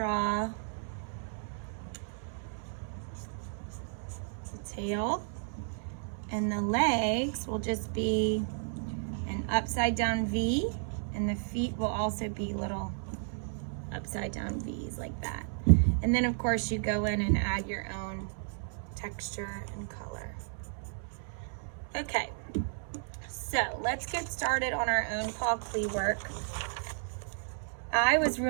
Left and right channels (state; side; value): silent; left; 56 dB below the other